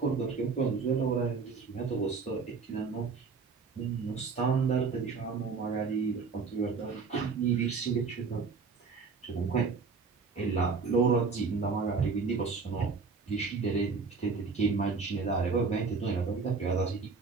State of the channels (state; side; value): quieter; left; 4.9 dB